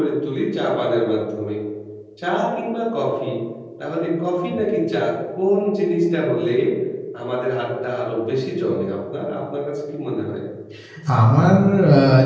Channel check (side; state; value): both; identical; correlation 1.00